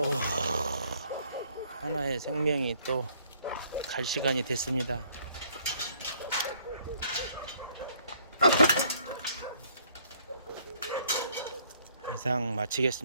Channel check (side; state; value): both; inverted; correlation -0.63